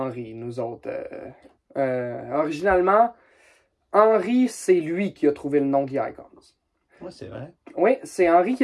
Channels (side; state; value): both; identical; correlation 1.00